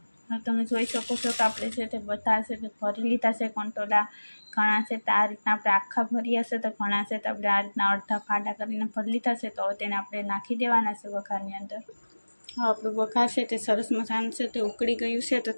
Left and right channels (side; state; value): both; inverted; correlation -1.00